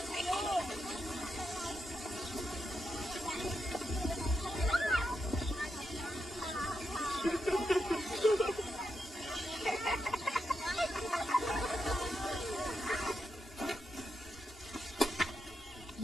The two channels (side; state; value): both; normal; correlation 0.85